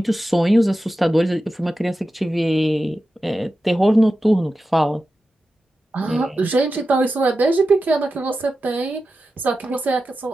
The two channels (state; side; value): normal; both; correlation 0.92